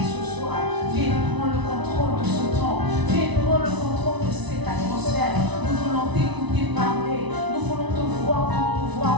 ce soir. Viens prendre le contrôle de ce temps. Viens prendre le contrôle de cette atmosphère. Nous voulons t'écouter parler. Nous voulons te voir, te mouvoir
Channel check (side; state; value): left; late; 1.0 ms